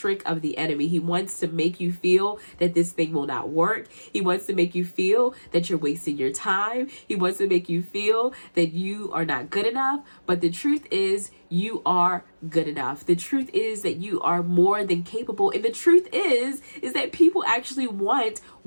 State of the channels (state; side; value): inverted; both; correlation -1.00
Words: of the enemy. He wants to make you feel that this thing will not work. He wants to make you feel that you're wasting your time. He wants to make you feel that you are not good enough. But the truth is, you are good enough. The truth is that you are more than capable. And the truth is that people actually want